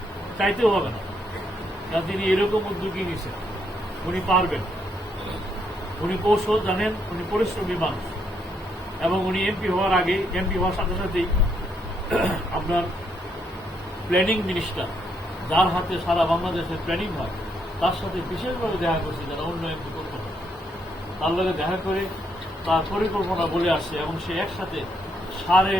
চাইতেও হবে না। কারণ তিনি এরকম উদ্যোগী নিয়েছেন, উনি পারবেন, উনি কৌশল জানেন, উনি পরিশ্রমী মানুষ, এবং উনি এমপি হওয়ার আগে, এমপি হওয়ার সাথে সাথেই আপনার প্ল্যানিং মিনিস্টার, যার হাতে সারা বাংলাদেশের প্ল্যানিং হয়, তার সাথে বিশেষভাবে দেখা করছে, যারা উন্নয়ন করতে হয় তার লগে দেখা করে তার পরিকল্পনা বলে আসছে, এবং সে একসাথে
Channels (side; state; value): both; normal; correlation 0.75